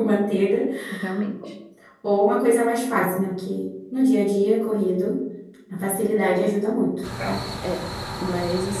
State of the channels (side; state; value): both; identical; correlation 1.00